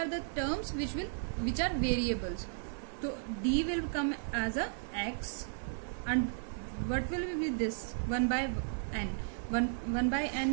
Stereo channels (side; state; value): left; silent; digital silence